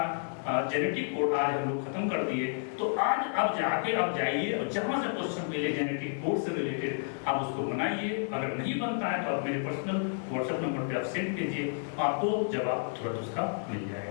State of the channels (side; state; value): right; silent; digital silence